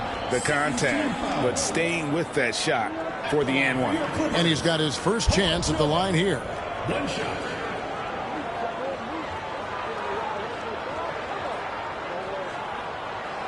the contact, but staying with that shot for the and one. And he's got his first chance at the line here. One shot.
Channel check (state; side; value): identical; both; correlation 1.00